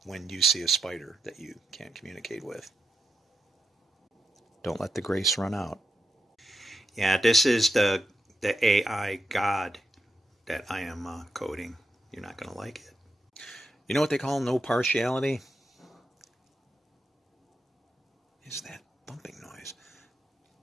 when you see a spider that you can't communicate with. Don't let the grace run out. Yeah, this is the AI God that I am coding. You're not going to like it. You know what they call no partiality? Is that bumping noise?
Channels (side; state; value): both; normal; correlation 0.86